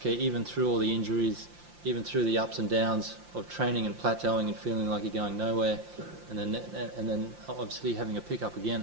even through all the injuries, even through the ups and downs of training and plateauing and feeling like you're going nowhere, and then obviously having a pickup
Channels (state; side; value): late; left; 5.7 ms